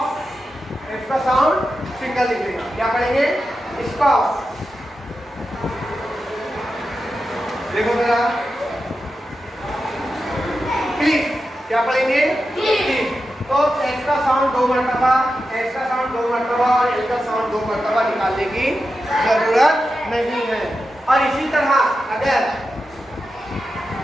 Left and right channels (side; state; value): both; normal; correlation 0.90